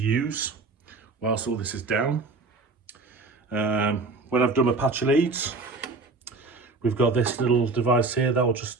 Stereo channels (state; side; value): quieter; left; 3.7 dB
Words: use whilst all this is down. When I've done my patch leads, we've got this little device here that will